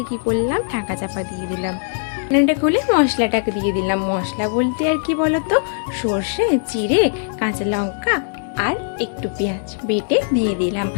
কি করলাম, ঢাকা চাপা দিয়ে দিলাম। রান্নাটা খুলে মশলাটাকে দিয়ে দিলাম। মশলা বলতে আর কি বলো তো, সর্ষে, জিরে, কাঁচা লঙ্কা আর একটু পেঁয়াজ বেটে দিয়ে দিলাম।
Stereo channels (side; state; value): right; silent; digital silence